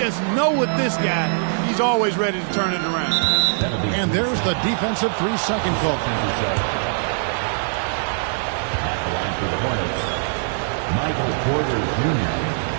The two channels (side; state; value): left; silent; 64 dB below the other